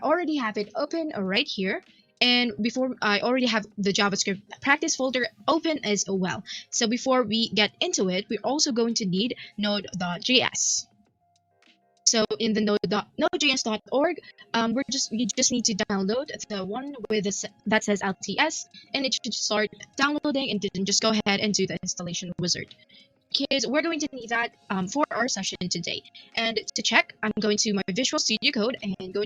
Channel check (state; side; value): identical; both; correlation 1.00